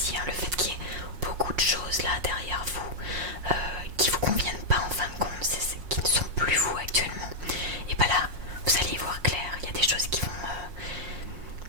hein, le fait qu'il y ait beaucoup de choses là derrière vous qui vous conviennent pas en fin de compte, qui ne sont plus vous actuellement. Et bah là, vous allez y voir clair, il y a des choses qui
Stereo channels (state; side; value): late; left; 5.5 ms